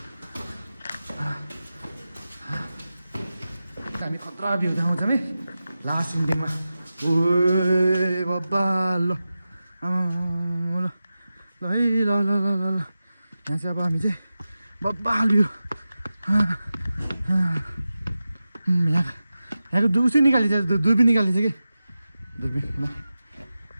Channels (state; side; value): inverted; both; correlation -0.94